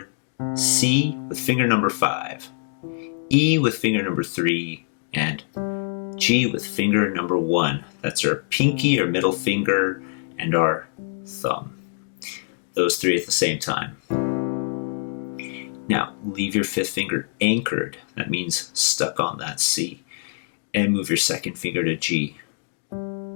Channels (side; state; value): right; silent; digital silence